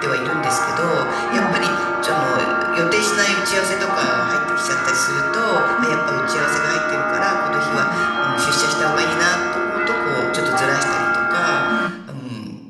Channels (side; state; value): both; identical; correlation 1.00